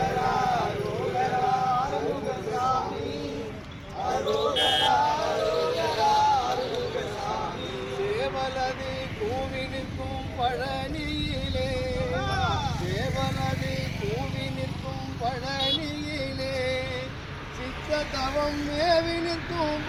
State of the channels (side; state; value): both; identical; correlation 1.00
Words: அரோகரா அருகசாமி அரோகரா அரோகரா அருகசாமி சேவலது கூவி நிற்கும் பழனியிலே சேவலது கூவி நிற்கும் பழனியிலே சித்த தவம் மேவி நிற்கும்